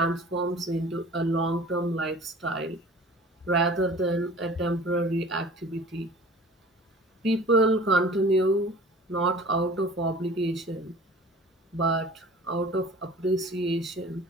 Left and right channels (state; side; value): normal; both; correlation 0.45